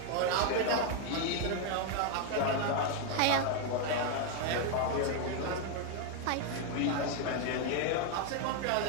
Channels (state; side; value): different; both; correlation 0.01